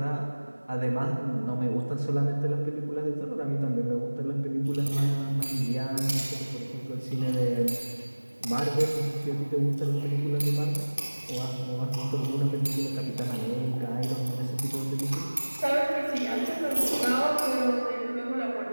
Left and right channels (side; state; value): both; inverted; correlation -1.00